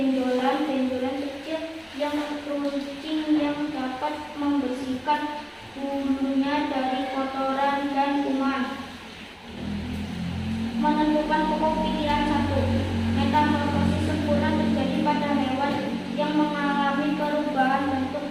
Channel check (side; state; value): both; identical; correlation 1.00